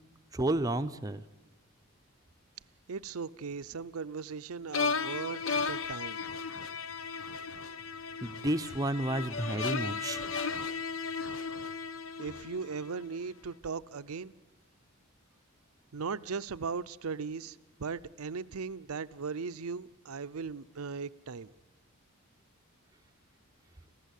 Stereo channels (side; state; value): both; normal; correlation 0.12